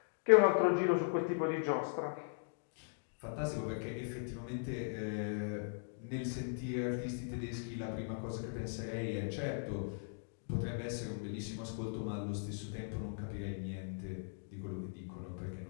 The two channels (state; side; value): silent; right; digital silence